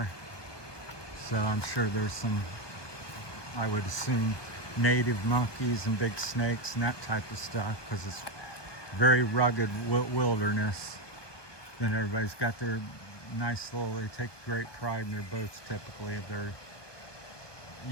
So I'm sure there's some, I would assume, native monkeys and big snakes and that type of stuff, because it's very rugged wilderness. Then everybody's got their nice little, they take great pride in their boats typically. If they're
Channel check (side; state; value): right; late; 1.2 ms